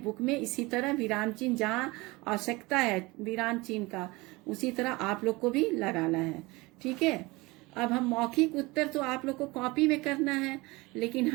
में इसी तरह विराम चिन्ह, जहाँ आवश्यकता है विराम चिन्ह का, उसी तरह आप लोग को भी लगाना है। ठीक है। अब हम मौखिक उत्तर तो आप लोग को कॉपी में करना है, लेकिन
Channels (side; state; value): left; quieter; 22.9 dB